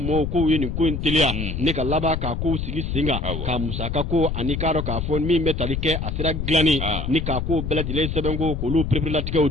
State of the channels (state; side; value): noise; left; rumble, 3 dB below the sound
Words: mɔgɔw k'u ye nin ko in teliya ne ka laban k'a k'u sigi sen kan ka musaka ko ani k'a dɔn k'a fɔ min bɛ tali kɛ a sera dilanni ni k'a k'o bɛɛ lajɛlen sɛbɛn ko k'olu pereperelatigɛw